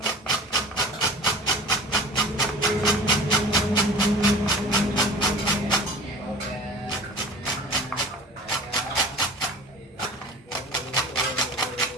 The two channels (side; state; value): both; normal; correlation 0.41